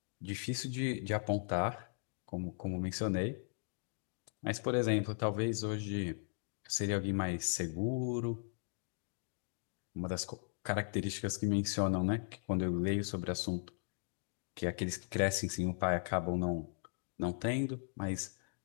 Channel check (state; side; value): silent; right; digital silence